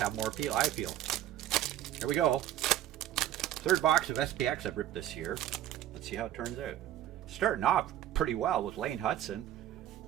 more appeal. I feel. Here we go. 3rd box of SPX I've ripped this year. Let's see how it turns out. Starting off pretty well with Lane Hudson,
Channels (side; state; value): left; quieter; 12.6 dB